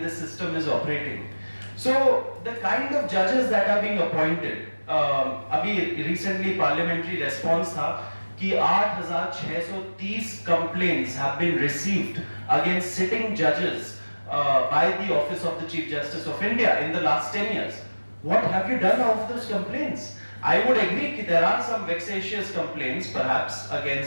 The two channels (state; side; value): inverted; both; correlation -1.00